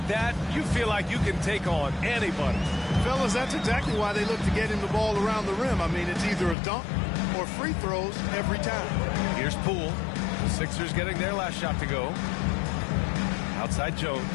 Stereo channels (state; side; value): drops out; right; at 6.6 s